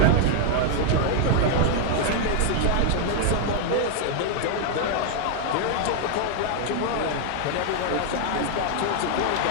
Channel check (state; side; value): different; both; correlation 0.00